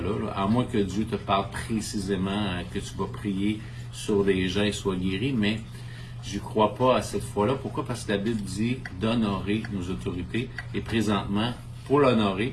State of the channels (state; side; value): identical; both; correlation 1.00